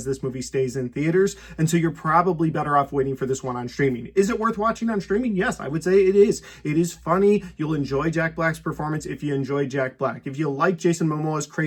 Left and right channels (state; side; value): identical; both; correlation 1.00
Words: this movie stays in theaters. And so you're probably better off waiting for this one on streaming. Is it worth watching on streaming? Yes, I would say it is. It is funny. You'll enjoy Jack Black's performance if you enjoy Jack Black. If you like Jason Momoa's